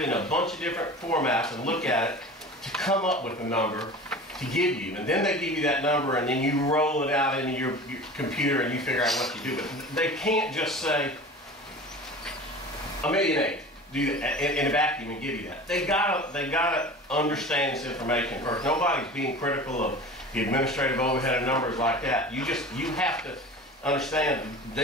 in a bunch of different formats and look at it to come up with a number to give you. And then they give you that number, and then you roll it out into your computer and you figure out what you do. But they can't just say $1.8 million, do that in a vacuum and give you that. They gotta understand this information first. Nobody's being critical of the administrative overhead of numbers like that. You have to understand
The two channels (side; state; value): both; normal; correlation 0.37